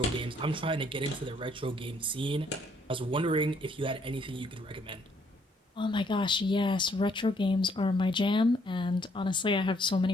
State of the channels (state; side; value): normal; both; correlation 0.67